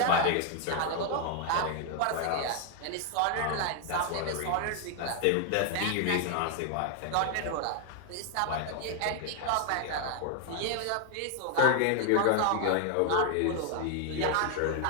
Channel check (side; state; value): both; different; correlation 0.00